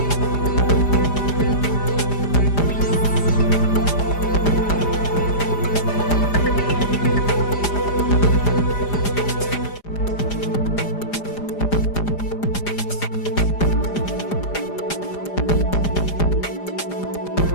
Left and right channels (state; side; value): late; right; 4.9 ms